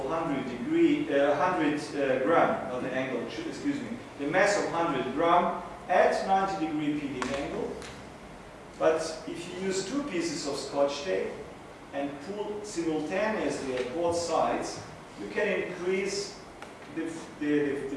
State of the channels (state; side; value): identical; both; correlation 1.00